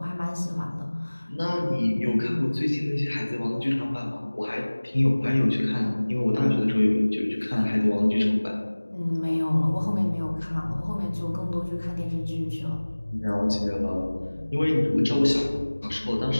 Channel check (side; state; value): both; inverted; correlation -1.00